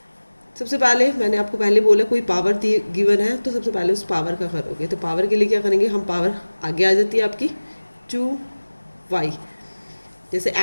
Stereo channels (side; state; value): both; inverted; correlation -1.00